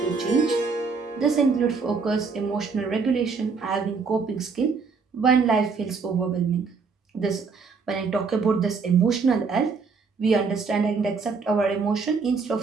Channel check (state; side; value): quieter; left; 4.9 dB